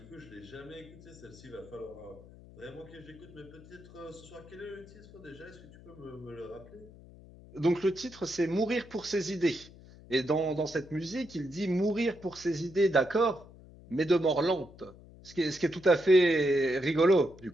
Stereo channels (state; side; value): noise; left; hum, 20 dB below the sound